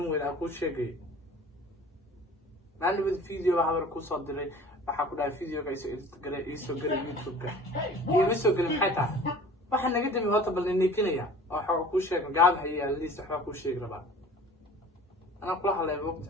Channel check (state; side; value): normal; both; correlation 0.45